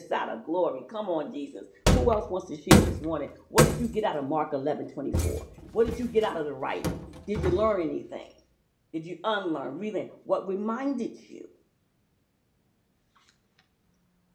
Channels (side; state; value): both; identical; correlation 1.00